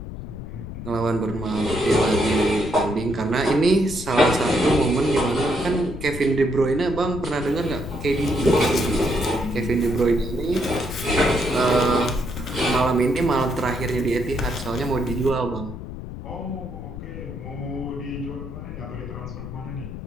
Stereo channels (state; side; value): noise; left; rumble, 10 dB below the sound